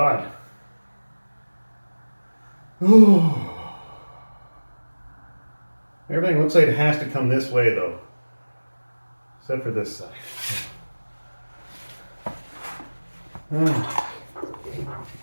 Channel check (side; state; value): both; inverted; correlation -1.00